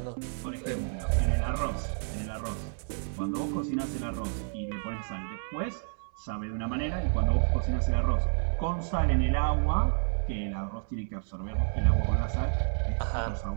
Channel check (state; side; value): silent; left; 58 dB below the other